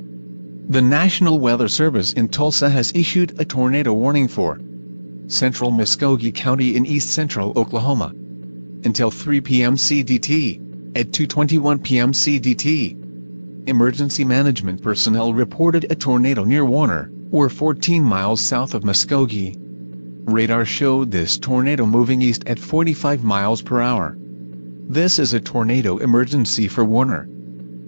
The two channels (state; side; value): inverted; both; correlation -1.00